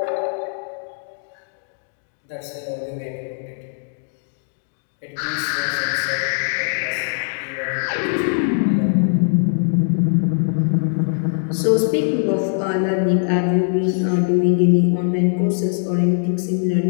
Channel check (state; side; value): silent; right; digital silence